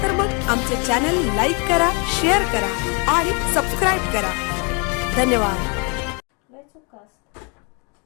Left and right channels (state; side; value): quieter; right; 34.3 dB